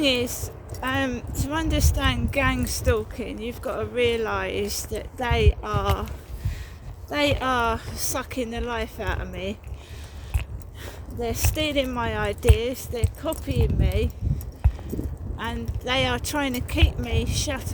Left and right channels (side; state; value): both; identical; correlation 1.00